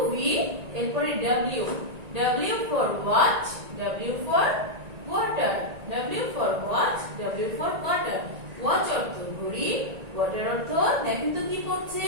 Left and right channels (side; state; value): left; late; 1.9 ms